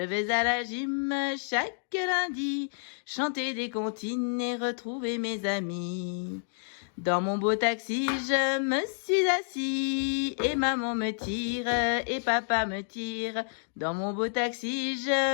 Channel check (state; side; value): silent; right; digital silence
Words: vais à la gym chaque lundi, chanter des comptines et retrouver mes amis. Dans mon beau taxi, je me suis assis, et maman me tire, et papa me tire. Dans mon beau taxi,